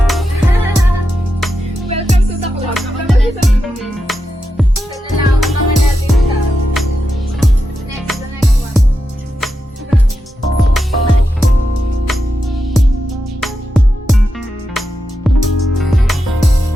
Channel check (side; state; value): both; normal; correlation 0.88